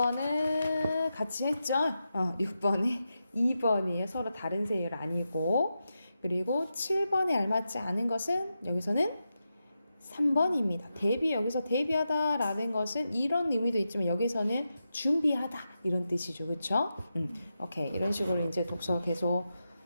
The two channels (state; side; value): inverted; both; correlation -0.89